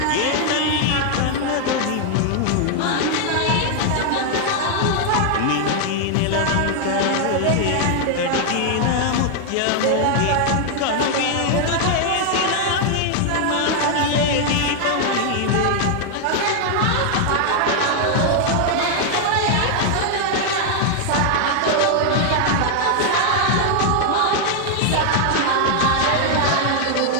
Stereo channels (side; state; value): both; different; correlation 0.00